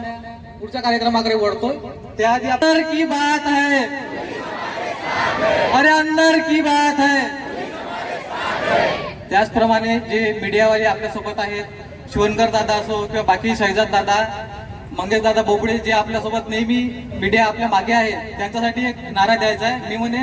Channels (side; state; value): both; identical; correlation 1.00